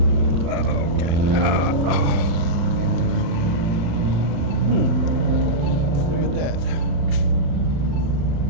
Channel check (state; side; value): late; left; 35 ms